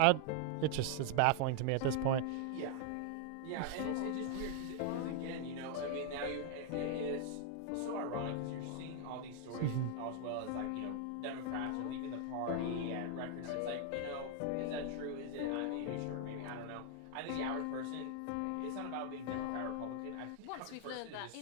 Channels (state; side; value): different; both; correlation 0.00